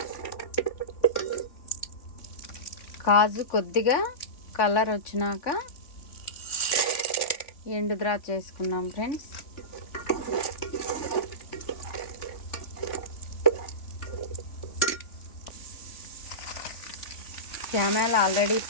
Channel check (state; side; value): late; right; 3.5 ms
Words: కాజు కొద్దిగా కలర్ వచ్చినాక ఎండు ద్రాక్ష వేసుకున్నాం ఫ్రెండ్స్. క్యామెల్ ఆల్రెడీ